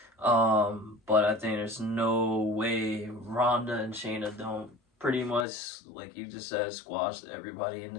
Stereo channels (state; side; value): drops out; right; at 5.5 s